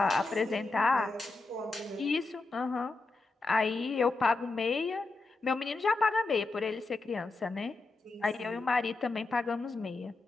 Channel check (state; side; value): quieter; right; 3.5 dB